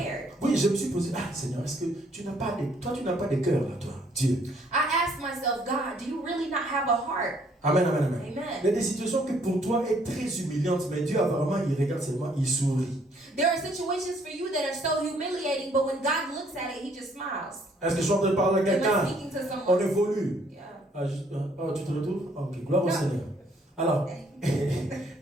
Oui, je me suis posé, ah Seigneur, est-ce que tu n'as pas de cœur là, toi, Dieu? I asked myself, God, do you really not have a heart? Amen, amen, amen. Amen. Il y a des situations que pour toi est très humiliantes, mais Dieu a vraiment, il regarde seulement, il sourit. There are situations for you that are so humiliating, but when God looks at it, He just smiles. Est-ce que je suis en train de parler à Am I quelqu'un? speaking to On someone? évolue. Yeah. Ah, tu te retrouves? Ok, gloire au Non. Seigneur. Alors,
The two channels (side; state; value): both; normal; correlation 0.65